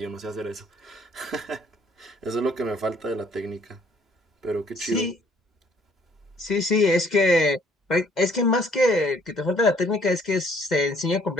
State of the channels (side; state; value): both; normal; correlation 0.61